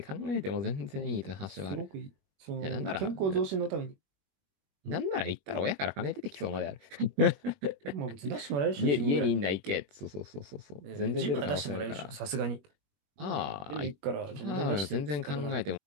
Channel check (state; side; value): late; left; 21 ms